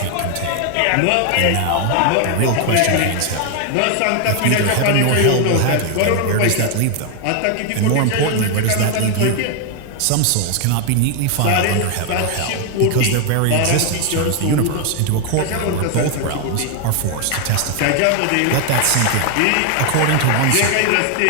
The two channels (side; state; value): both; different; correlation 0.00